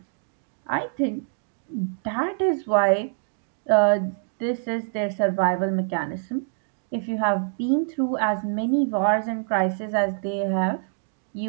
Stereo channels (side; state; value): left; silent; digital silence